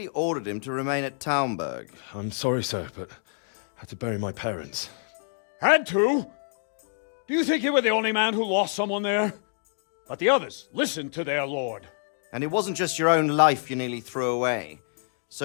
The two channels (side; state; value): right; silent; digital silence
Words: ordered him to remain at Taunberg. I'm sorry, sir, but I had to bury my parents. Had to? Do you think you were the only man who lost someone there? But the others listened to their lord. And it wasn't just your own life you nearly threw away.